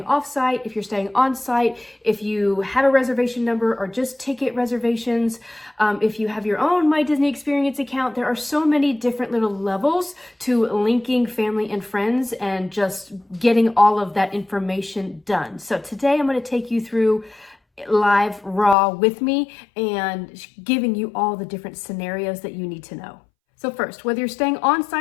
off-site, if you're staying on-site, if you have a reservation number or just ticket reservations, if you have your own My Disney Experience account. There are so many different little levels to linking family and friends and just getting all of that information done. So today I'm going to take you through live raw with me and giving you all the different scenarios that you need to know. So first, whether you're staying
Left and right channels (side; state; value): right; drops out; at 18.8 s